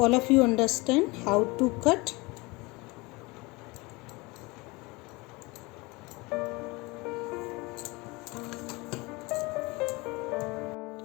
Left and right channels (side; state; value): right; quieter; 24.4 dB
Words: of you understand how to cut.